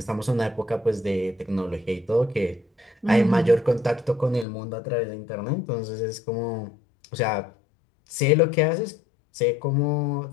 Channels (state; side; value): drops out; right; at 4.5 s